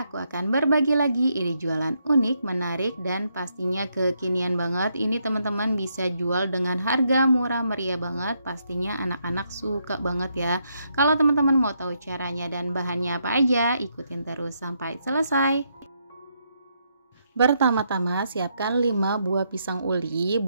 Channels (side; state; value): both; inverted; correlation -0.78